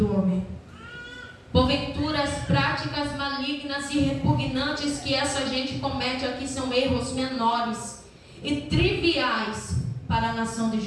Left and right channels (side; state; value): both; identical; correlation 1.00